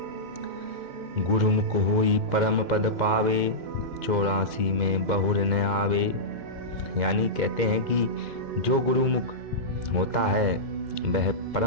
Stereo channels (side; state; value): left; late; 2.1 ms